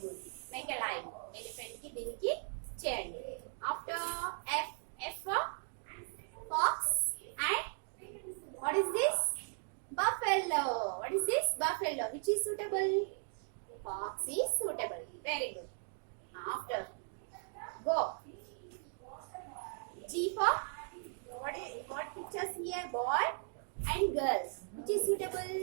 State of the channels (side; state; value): left; silent; 53 dB below the other